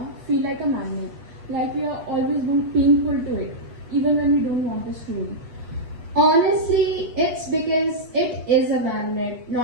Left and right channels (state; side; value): late; left; 8.2 ms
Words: feel like a magnet? Like we are always being pulled to it, even when we don't want us to. Honestly, it's because it is a magnet,